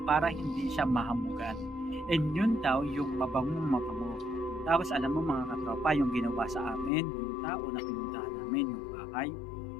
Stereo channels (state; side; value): drops out; right; at 6.9 s